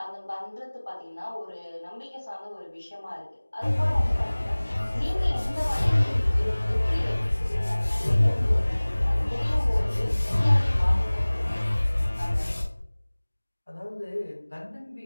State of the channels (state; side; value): inverted; both; correlation -1.00